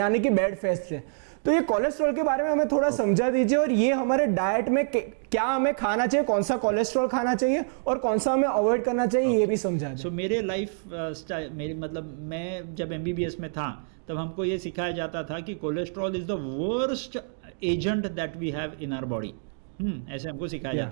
कि बैड फैट से। तो ये कोलेस्ट्रॉल के बारे में हमें थोड़ा समझा दीजिए, और ये हमारे डाइट में क्या हमें खाना चाहिए, कौन सा कोलेस्ट्रॉल खाना चाहिए और कौन सा हमें अवॉइड करना चाहिए, ये भी समझा दें। मेरे लाइफ स्टाइल मैं जब MBBS में था तब हमको ये सिखाया जाता था कि cholesterol is the worst agent that we have in our body. ऐसे हमको सिखाया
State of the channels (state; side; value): silent; left; digital silence